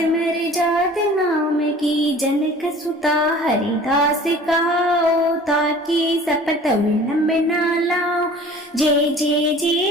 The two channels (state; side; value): normal; both; correlation 0.46